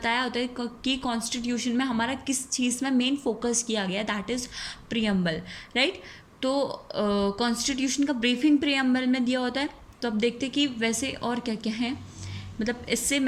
होता है कि कॉन्स्टिट्यूशन में हमारा किस चीज़ में मेन फोकस किया गया, दैट इज़ प्रियम्बल, राइट। तो कॉन्स्टिट्यूशन का ब्रीफिंग प्रियम्बल में दिया होता है। तो अब देखते कि वैसे और क्या क्या है, मतलब इससे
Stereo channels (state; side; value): identical; both; correlation 1.00